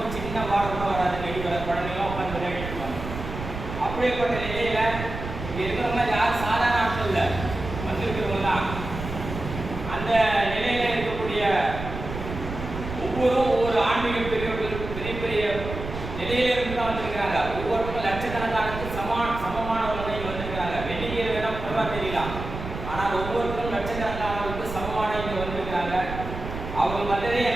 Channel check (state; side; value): noise; right; rumble, 8 dB below the sound